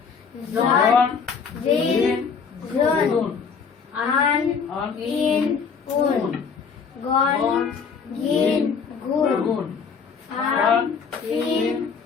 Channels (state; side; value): quieter; right; 6.0 dB